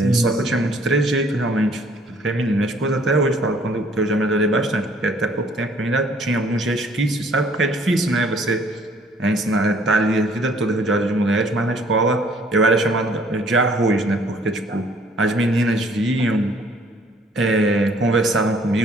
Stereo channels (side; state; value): both; normal; correlation 0.60